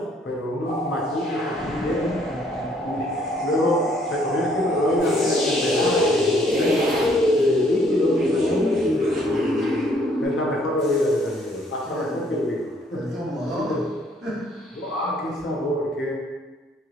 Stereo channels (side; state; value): both; normal; correlation 0.64